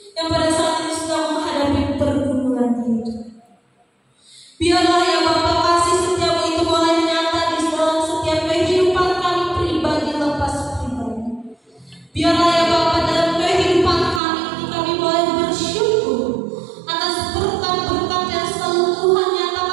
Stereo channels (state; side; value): drops out; left; at 14.2 s